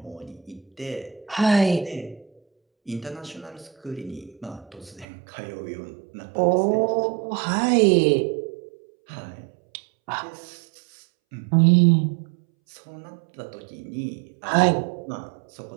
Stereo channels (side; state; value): left; drops out; at 5.1 s